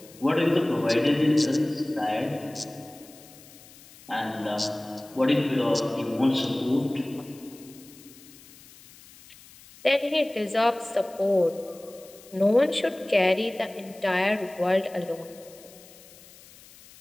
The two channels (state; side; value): noise; left; hiss, 22 dB below the sound